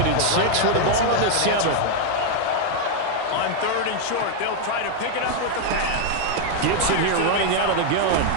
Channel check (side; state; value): both; different; correlation 0.00